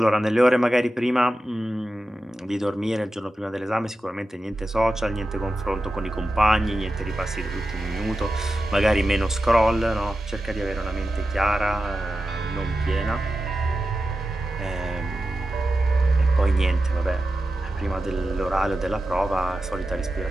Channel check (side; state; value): both; normal; correlation 0.92